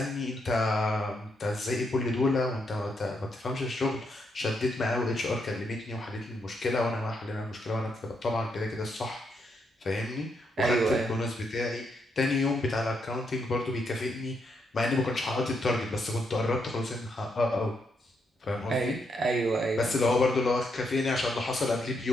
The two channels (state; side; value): normal; both; correlation 0.78